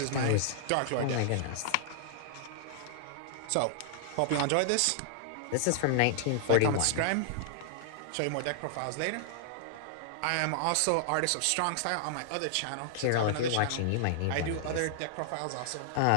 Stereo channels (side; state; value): both; different; correlation -0.01